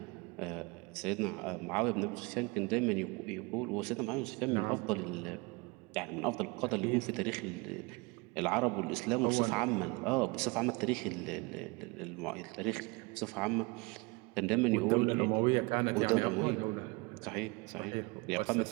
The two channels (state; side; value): quieter; left; 27.0 dB